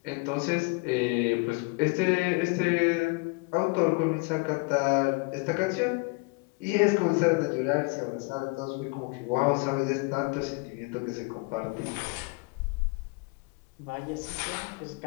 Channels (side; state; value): right; quieter; 28.0 dB